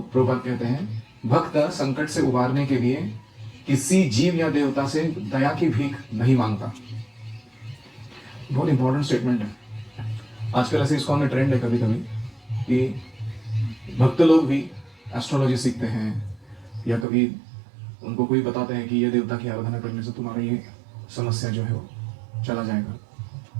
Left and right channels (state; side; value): drops out; left; at 17.1 s